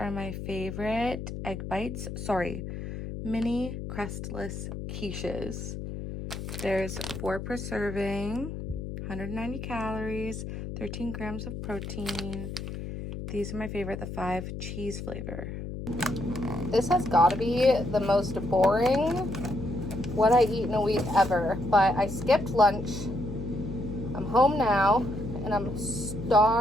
my favorite egg bites. Sorry, mini crestless quiches. There's 4 per serving, 190 calories, 13 grams of protein. These are my favorite, the 5 cheese flavor. This has got to be the most boring what I eat in a week ever, but I skipped lunch. I'm home now and I'm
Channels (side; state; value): left; noise; hum, 7 dB below the sound